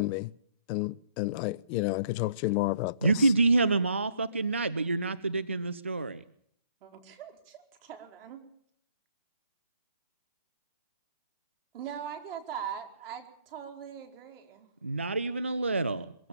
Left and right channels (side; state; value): both; inverted; correlation -0.62